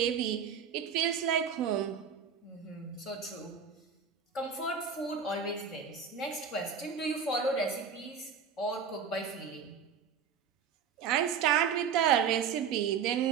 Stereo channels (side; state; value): left; quieter; 6.8 dB